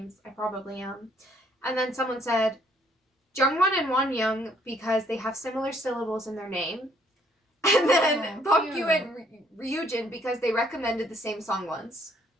I probably am. And then someone said Jungwon and Wonyoung because they have similar syllables in their name. And then Bomgyu and Ryujin because they recommended the same song once.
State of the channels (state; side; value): normal; both; correlation 0.65